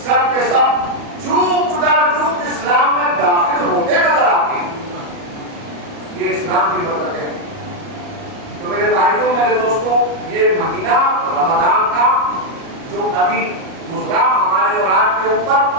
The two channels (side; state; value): left; late; 38 ms